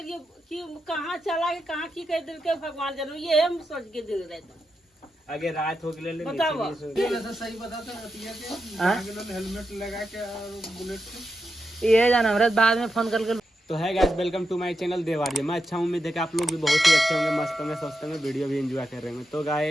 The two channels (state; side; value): normal; both; correlation 0.87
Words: कि कहाँ चला के कहाँ की कर दिल के भगवान जरूर ये हम सोच के दिल रहता आगे रात हो गए बताओ सही बताते हेलमेट लगा के और बुलेट ये जान हमरा बाद में फोन कर तो है guys, welcome to my channel Devarya. मैं अच्छा हूँ, उम्मीद है कि आप लोग भी बहुत ही अच्छे होंगे, मस्त होंगे, स्वस्थ होंगे, वीडियो भी एंजॉय कर रहे होंगे। तो